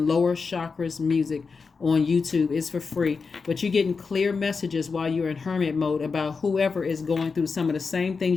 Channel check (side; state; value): right; quieter; 4.9 dB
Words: lower chakras music on YouTube. It's for free. But you're getting clear messages while you're in hermit mode about whoever is going through some of the same